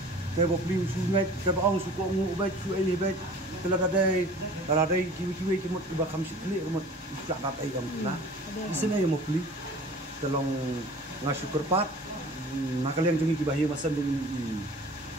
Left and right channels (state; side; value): normal; both; correlation 0.44